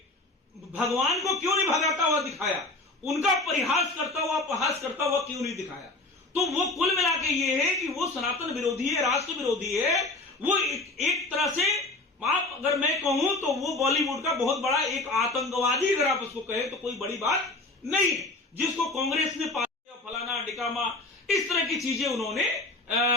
भगवान को क्यों नहीं भगाता हुआ दिखाया, उनका परिहास करता हुआ अपहास करता हुआ क्यों नहीं दिखाया? तो वो कुल मिला के ये है कि वो सनातन विरोधी है, राष्ट्र विरोधी है। वो एक तरह से आप अगर मैं कहूं तो वो बॉलीवुड का बहुत बड़ा एक आतंकवादी, अगर आप उसको कहें तो कोई बड़ी बात नहीं है, जिसको कांग्रेस ने फलाना डिकामा इस तरह की चीजें उन्होंने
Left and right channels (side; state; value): right; quieter; 3.0 dB